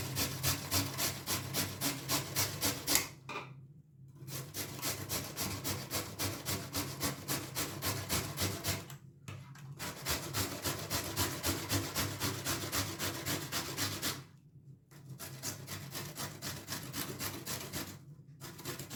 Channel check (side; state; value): both; identical; correlation 1.00